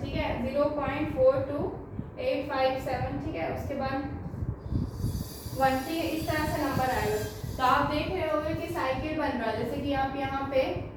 ठीक है, 0.42857। ठीक है, उसके बाद 1। ठीक है, इस तरह से नंबर आएगा। तो आप देख रहे होंगे कि साइकिल बन रहा है, जैसे कि आप यहाँ पे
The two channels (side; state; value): both; identical; correlation 1.00